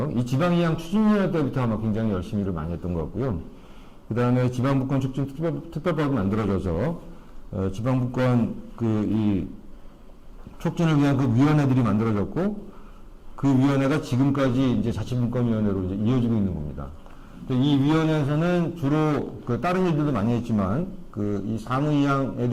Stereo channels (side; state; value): both; identical; correlation 1.00